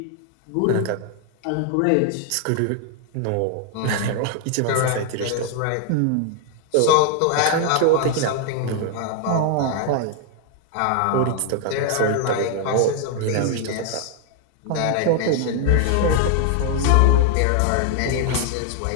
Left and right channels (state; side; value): different; both; correlation 0.00